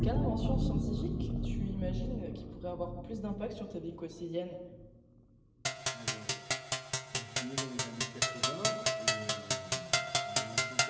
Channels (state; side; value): identical; both; correlation 1.00